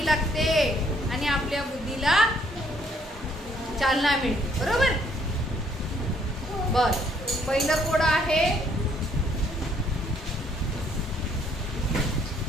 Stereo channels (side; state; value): both; normal; correlation 0.66